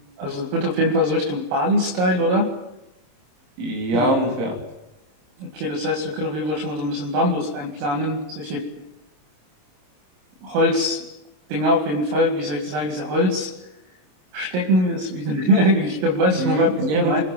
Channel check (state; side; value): late; left; 27 ms